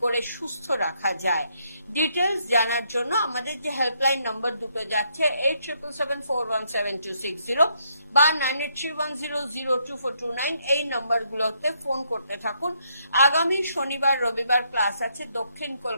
করে সুস্থ রাখা যায়। ডিটেলস জানার জন্য আমাদের যে হেল্পলাইন নাম্বার দুটো যাচ্ছে 8777417260 বা 9831002429, এই নাম্বারগুলোতে ফোন করতে থাকুন। আগামী শনিবার রবিবার ক্লাস আছে দক্ষিণ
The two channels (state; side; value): inverted; both; correlation -0.74